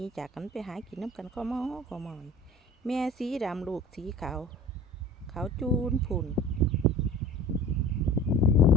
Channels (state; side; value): normal; both; correlation 0.42